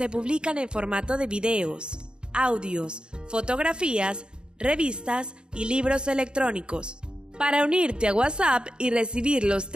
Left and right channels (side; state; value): left; late; 0.050 ms